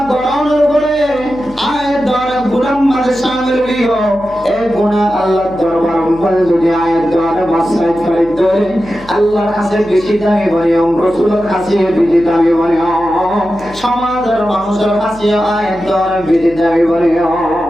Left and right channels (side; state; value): left; noise; hum, 20 dB below the sound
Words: করানোর পরে আয়াত দ্বারা গুনাহ মাঝে শামিল হইও এই গুনাহ আল্লাহর দরবার বল যদি আয়াত দ্বারা মাসরাত করে ধরে আল্লাহর কাছে বেশি দামি বনিও রাসূলের কাছে বেশি দামি বনিও সমাজের মানুষের কাছে আয়াত দ্বারা বেশি দামি বনিও